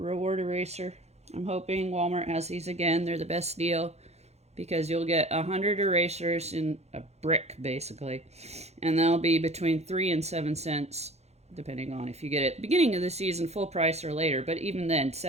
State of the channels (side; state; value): left; late; 0.31 ms